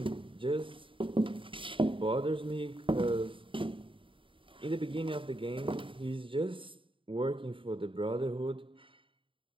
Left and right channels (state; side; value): late; left; 0.25 ms